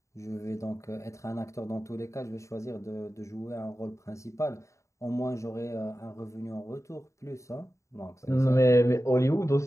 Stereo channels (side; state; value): right; late; 0.14 ms